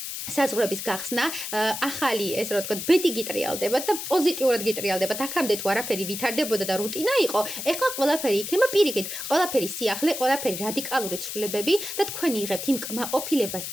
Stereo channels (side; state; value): left; noise; hiss, 6 dB below the sound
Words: საზღვრების გახსნა, ახალი ესე რომ ვთქვათ, ბედი გიტრიალდებათ და პოზიტიურად გიტრიალდებათ. აქამდე თუ არაფერი ვითარდებოდა და რუტინა იყო, ეხლა ყველაფერი იქნება პირიქით, ყველაფერი სიახლე, ყველაფერი რადიკალური ცვლილებები და თქვენ იღებთ იმ კმაყოფილებას,